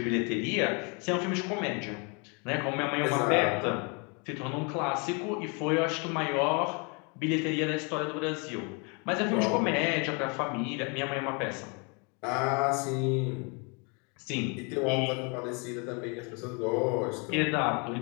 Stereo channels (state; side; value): quieter; right; 33.4 dB